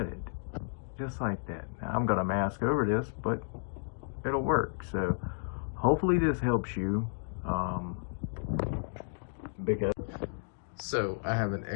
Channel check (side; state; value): right; silent; digital silence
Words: it. Just like that. Now I'm going to mask over this, but it'll work. So hopefully this helps you. So I have an